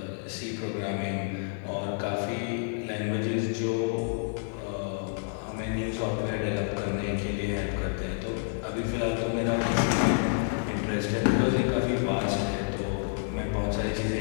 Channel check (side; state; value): right; silent; 59 dB below the other